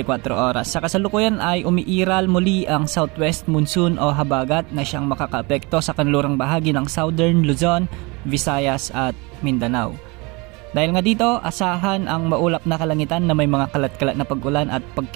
oras. Sa kasalukuyan ay umiiral muli ang southwest monsoon o habagat na siyang makakaapekto sa kanlurang bahagi ng Southern Luzon, Visayas at Mindanao. Dahil nga dito, asahan ang maulap na kalangitan na may mga kalat-kalat na pag-ulan at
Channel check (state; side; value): quieter; left; 27.0 dB